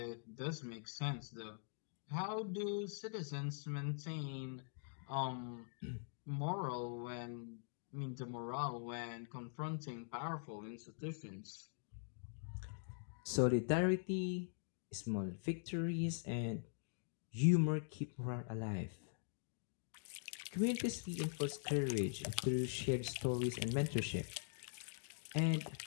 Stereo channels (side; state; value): right; silent; digital silence